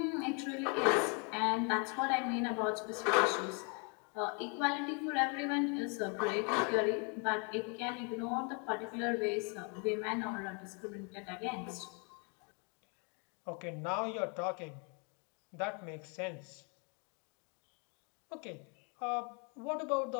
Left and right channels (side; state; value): right; quieter; 35.9 dB